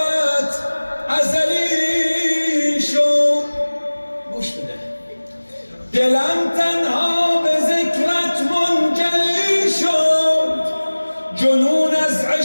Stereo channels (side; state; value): both; inverted; correlation -1.00